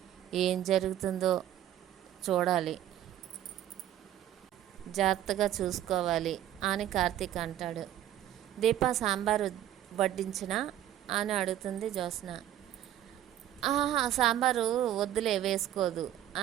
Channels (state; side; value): quieter; left; 12.1 dB